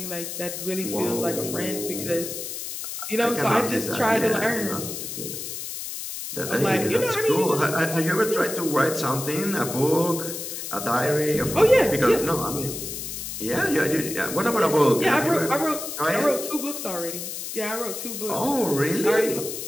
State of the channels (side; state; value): left; noise; hiss, 7 dB below the sound